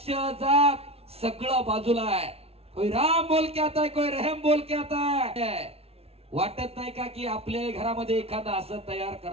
जात सगळं बाजूला आहे. कोई राम बोल के आता है, कोई रहम बोल के आता है. वाटत नाही का की आपल्या घरामध्ये एखादं असं तयार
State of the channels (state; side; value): late; left; 0.29 ms